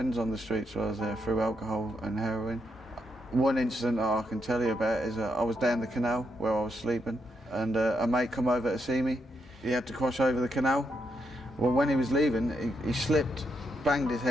on the streets while I was there through alcohol and heroin. One incident that I can tell you about is I was down the canal where I was sleeping, and a mate come over to see me. He had to cross over the canal. Well, when he was leaving, he slipped, banged his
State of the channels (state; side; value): normal; both; correlation 0.80